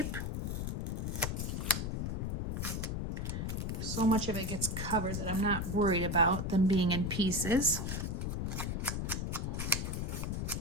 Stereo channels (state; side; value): noise; left; rumble, 1 dB below the sound